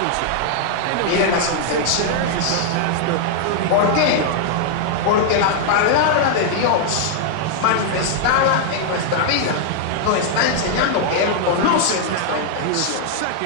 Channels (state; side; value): different; both; correlation -0.01